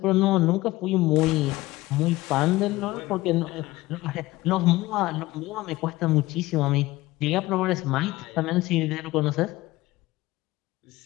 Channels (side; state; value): right; quieter; 18.6 dB